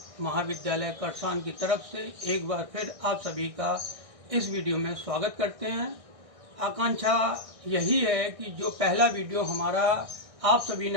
महाविद्यालय करसान की तरफ से एक बार फिर आप सभी का इस वीडियो में स्वागत करते हैं। आकांक्षा यही है कि जो पहला वीडियो हमारा आप सभी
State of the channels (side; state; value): left; late; 1.6 ms